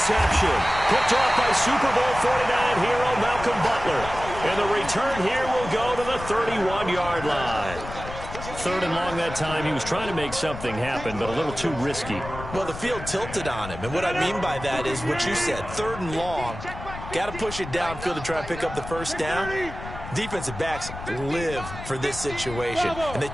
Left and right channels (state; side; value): noise; left; rumble, 11 dB below the sound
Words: Picked off by Super Bowl 49 hero Malcolm Butler. And the return here will go to the 31-yard line. Third and long that time. He was trying to make something happen, but a little too risky. Well, the field tilted on him. And what I mean by that is what you said. Third and long. Got to push it downfield to try and pick up the first down. Defensive backs live for this situation. And they